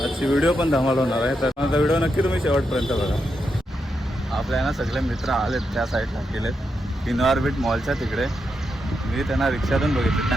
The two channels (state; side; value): normal; both; correlation 0.84